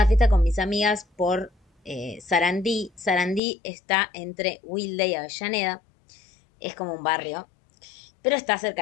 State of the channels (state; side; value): drops out; right; at 3.4 s